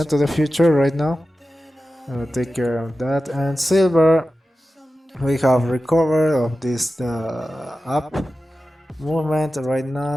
to the future right now. Take care of that. And silver, we have recovered of this up movement right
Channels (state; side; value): normal; both; correlation 0.94